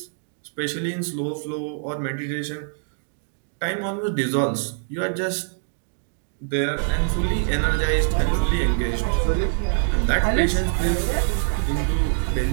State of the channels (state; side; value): silent; left; digital silence